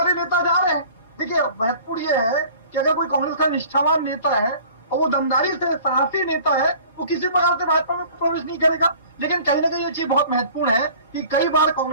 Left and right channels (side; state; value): both; inverted; correlation -0.47